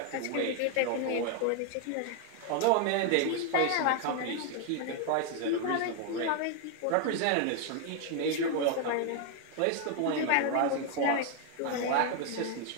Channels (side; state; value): both; different; correlation 0.00